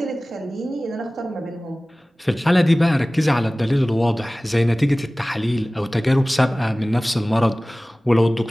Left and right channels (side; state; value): both; normal; correlation 0.98